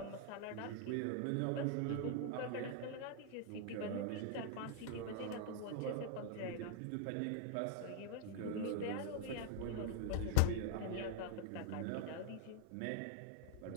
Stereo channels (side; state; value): both; different; correlation 0.00